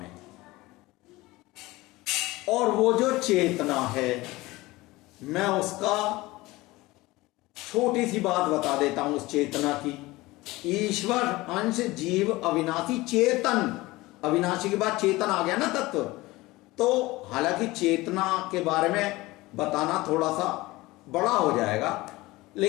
और वो जो चेतना है, मैं उसका छोटी सी बात बता देता हूं उस चेतना की। ईश्वर, अंश, जीव, अविनाशी, चेतन। अविनाशी के बाद चेतन आ गया ना तत्व। तो हालांकि चेतना के बारे में बताना थोड़ा सा बड़ा हो जाएगा,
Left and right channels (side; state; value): right; quieter; 20.1 dB